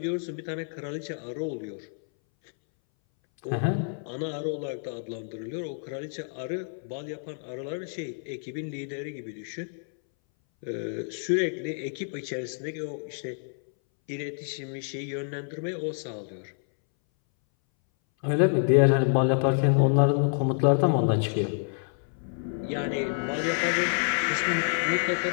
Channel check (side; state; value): right; silent; 59 dB below the other